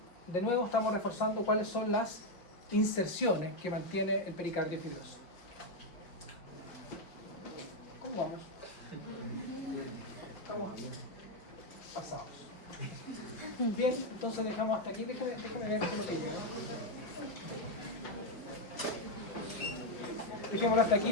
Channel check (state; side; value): late; right; 5.3 ms